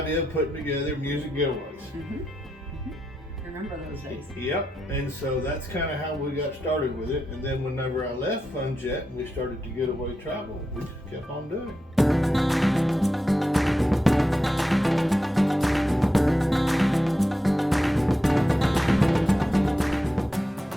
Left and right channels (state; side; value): normal; both; correlation 0.87